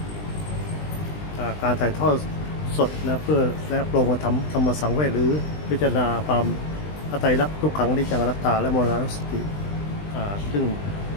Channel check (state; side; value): late; right; 20 ms